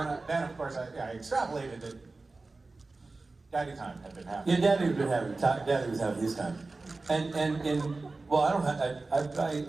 then of course I extrapolated it. Daddy time had been happening. Yeah, Daddy was having his time. And well, I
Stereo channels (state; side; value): quieter; left; 3.5 dB